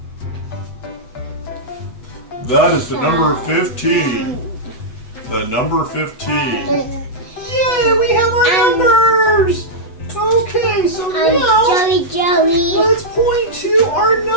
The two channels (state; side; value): late; right; 8.1 ms